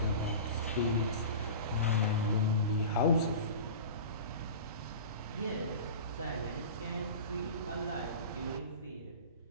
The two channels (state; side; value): inverted; both; correlation -0.34